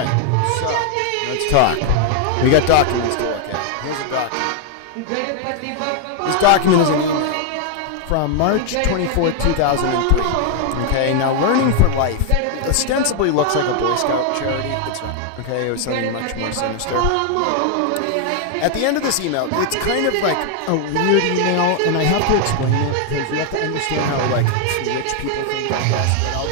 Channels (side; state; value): both; different; correlation 0.00